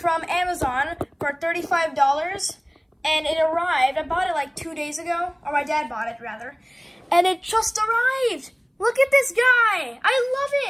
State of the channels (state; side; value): identical; both; correlation 1.00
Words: Amazon for $35, and it arrived. I bought it like 2 days ago, or my dad bought it rather, and it just arrived. Look at this guy. I love